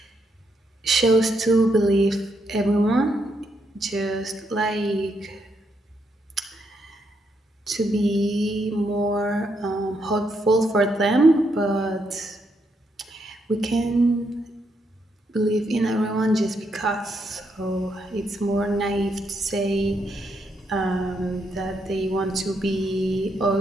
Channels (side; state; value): both; normal; correlation 0.78